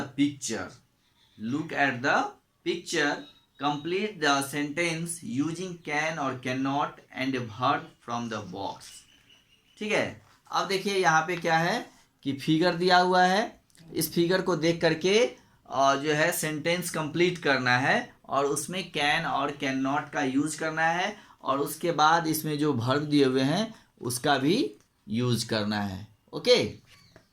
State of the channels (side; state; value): both; identical; correlation 1.00